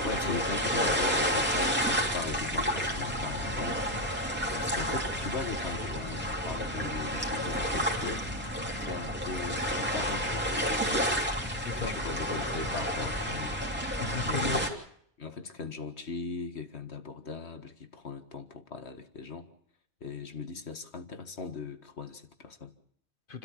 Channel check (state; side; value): normal; both; correlation 0.05